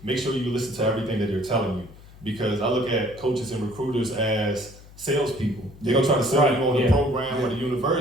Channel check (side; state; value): left; noise; hum, 21 dB below the sound